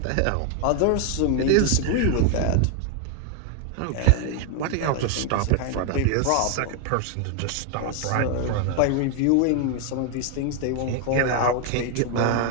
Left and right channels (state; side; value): different; both; correlation 0.01